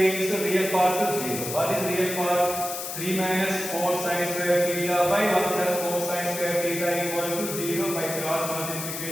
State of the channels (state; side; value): noise; left; hiss, 6 dB below the sound